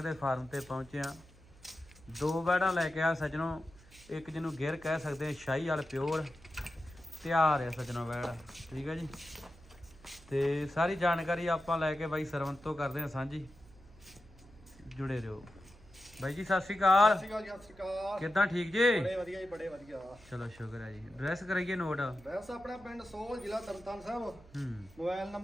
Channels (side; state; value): right; noise; hum, 23 dB below the sound